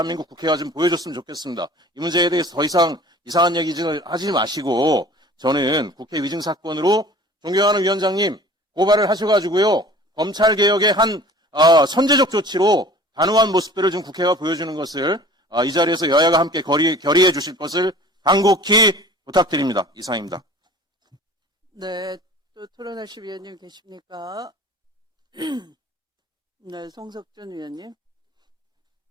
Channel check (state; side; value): normal; both; correlation 0.45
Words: 국회가 좀 보여줬으면 좋겠습니다. 이 문제에 대해서 더 이상 이상한 얘기 하지 마시고 저는 국회 위증 사건으로 존경하는 위원장님 고발을 하셔가지고요. 검찰개혁의 한 선제적 조치로 단호한 모습들을 좀 국회가 보여주는 것을 이 자리에서 여야가 함께 결의해 주실 것을 간곡히 부탁드립니다. 이상입니다. 네, 또 토론하실 위원님 계십니까? 네, 송석준 위원님.